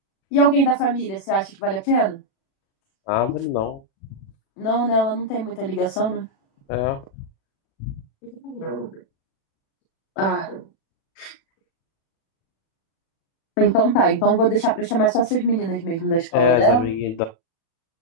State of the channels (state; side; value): late; right; 36 ms